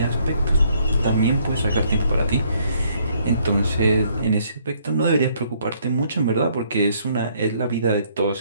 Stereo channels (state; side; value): inverted; both; correlation -0.67